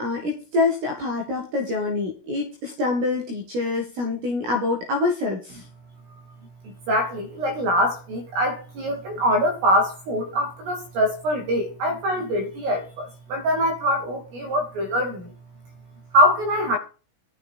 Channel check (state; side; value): late; left; 16 ms